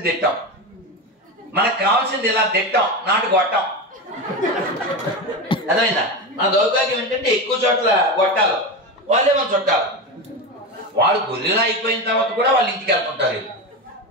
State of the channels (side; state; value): both; normal; correlation 0.19